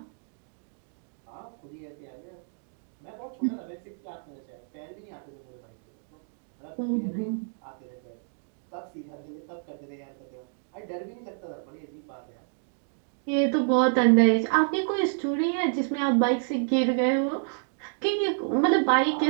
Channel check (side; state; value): left; silent; digital silence